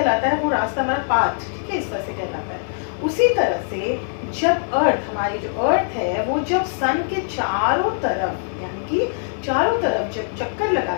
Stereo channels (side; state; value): right; silent; digital silence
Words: है, वो रास्ता हमारा पाथ, ठीक है, इस तरह से कहलाता है। उसी तरह से जब अर्थ, हमारी जो अर्थ है, वो जब सन के चारों तरफ, यानी कि चारों तरफ जब चक्कर